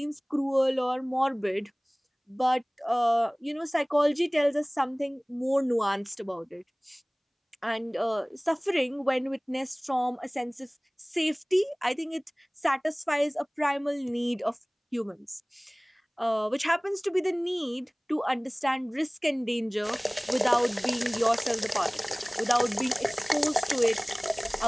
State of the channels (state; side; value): identical; both; correlation 1.00